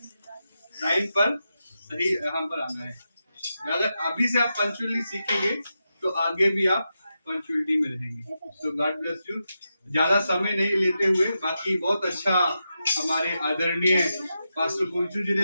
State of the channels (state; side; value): inverted; both; correlation -0.88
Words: टाइम पर सही यहाँ पर आना है। अगर अभी से आप पंक्चुअली सीखेंगे तो आगे भी आप पंक्चुअलिटी में रहेंगे। तो गॉड ब्लेस यू। ज्यादा समय नहीं लेते हुए, बाकी बहुत अच्छा हमारे आदरणीय पास्टर कुंचू जी